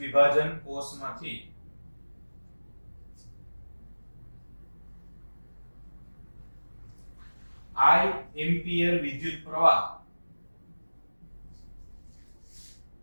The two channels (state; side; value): inverted; both; correlation -1.00